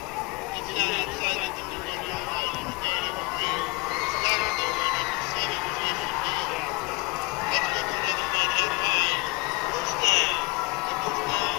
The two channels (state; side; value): quieter; right; 25.9 dB